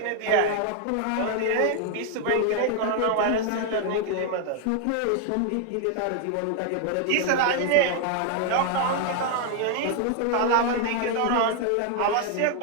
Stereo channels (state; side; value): different; both; correlation 0.00